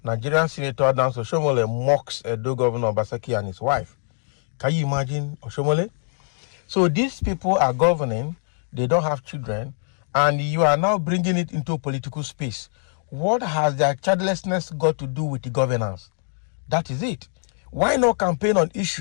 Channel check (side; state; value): right; silent; 55 dB below the other